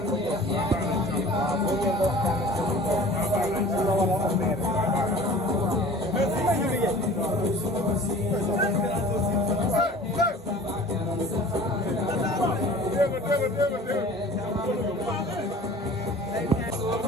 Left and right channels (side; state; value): both; normal; correlation 0.44